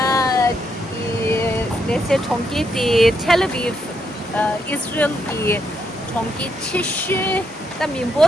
이 내세 총기디 텔레비전 이스라엘기 총기 70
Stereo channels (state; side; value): normal; both; correlation 0.78